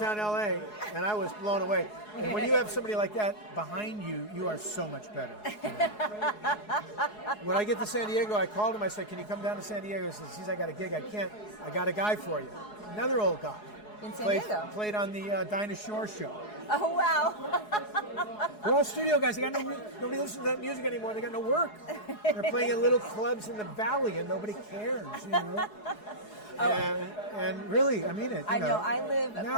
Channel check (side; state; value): right; late; 4.8 ms